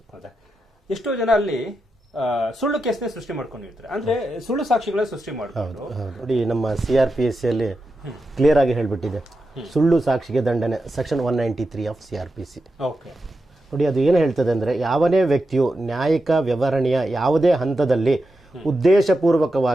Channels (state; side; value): normal; both; correlation 0.89